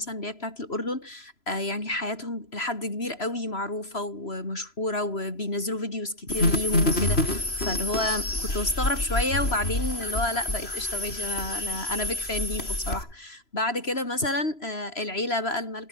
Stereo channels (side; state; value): right; late; 3.0 ms